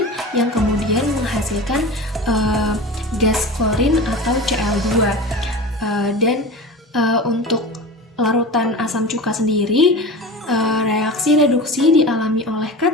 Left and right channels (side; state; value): both; normal; correlation 0.31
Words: yang kemudian menghasilkan gas klorin atau Cl2. Dan untuk larutan asam cuka sendiri, reaksi reduksi dialami oleh